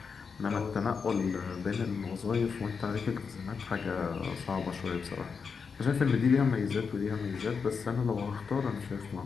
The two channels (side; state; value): right; quieter; 5.6 dB